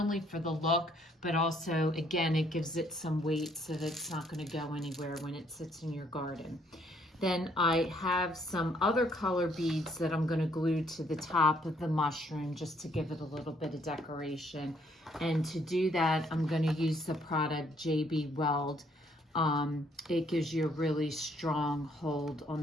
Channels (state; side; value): normal; both; correlation 0.67